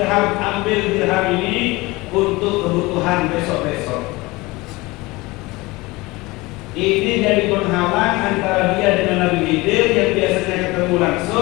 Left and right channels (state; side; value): quieter; right; 22.1 dB